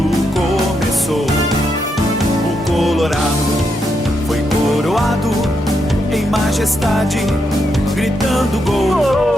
começou. O Colorado foi coroado em majestade, gritando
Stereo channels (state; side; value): normal; both; correlation 0.81